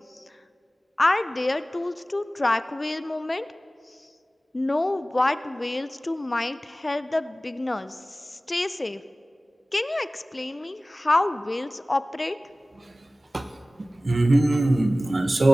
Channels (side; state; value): both; normal; correlation 0.97